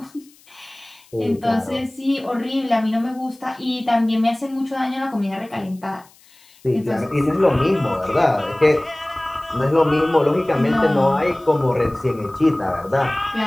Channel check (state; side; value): noise; left; hiss, 28 dB below the sound